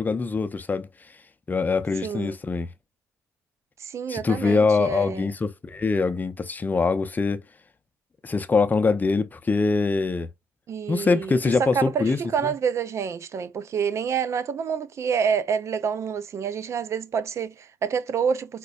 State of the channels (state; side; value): normal; both; correlation 0.76